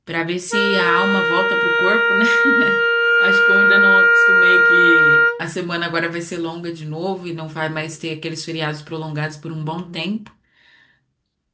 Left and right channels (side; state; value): both; identical; correlation 1.00